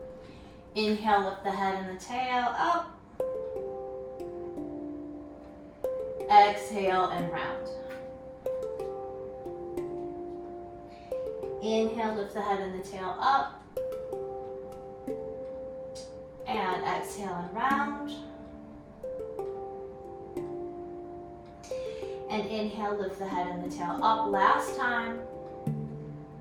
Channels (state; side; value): identical; both; correlation 1.00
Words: Inhale, lift the head and the tail up. Exhale and round. Inhale, lift the head and the tail up. And exhale and round. And inhale, lift the head and the tail up last time.